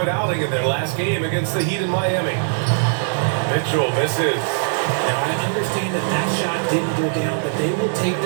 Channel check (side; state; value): left; silent; digital silence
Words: outing in their last game against the Heat in Miami. Mitchell misses. Now, I understand that that shot didn't go down, but they will take